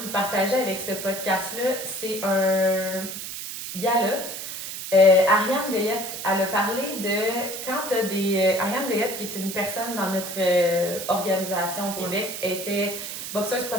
vous partager avec ce podcast-là, c'est un gars-là. Ariane Goyette, elle a parlé de quand tu as des. Ariane Goyette, qui est une personne dans notre organisation au Québec, était boxeuse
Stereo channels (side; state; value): right; noise; hiss, 7 dB below the sound